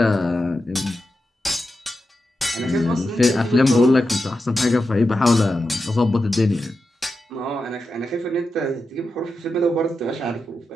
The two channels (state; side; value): normal; both; correlation 0.89